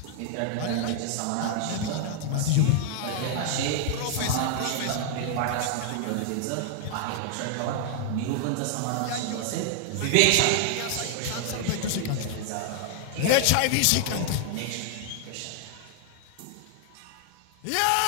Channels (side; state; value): both; different; correlation 0.00